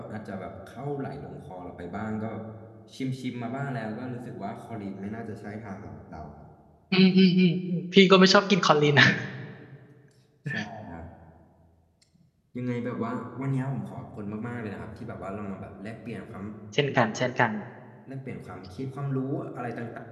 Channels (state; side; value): identical; both; correlation 1.00